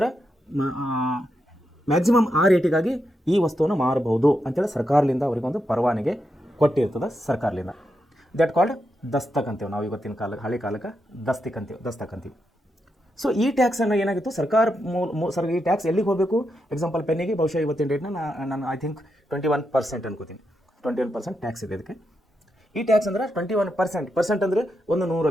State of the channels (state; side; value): normal; both; correlation 0.84